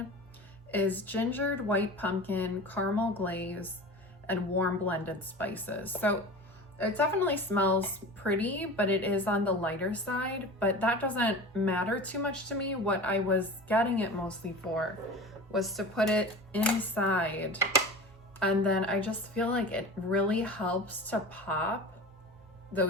is gingered white pumpkin, caramel glaze, and warm blended spices. So it definitely smells pretty, but it is on the lighter side, but that doesn't matter too much to me. What I was getting it mostly for was to put it inside. And then I just feel like it really helps to pop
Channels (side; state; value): both; normal; correlation 0.34